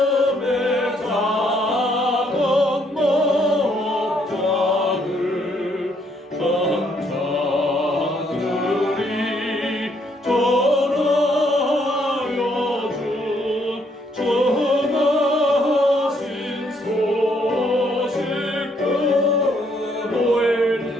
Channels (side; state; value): both; normal; correlation 0.70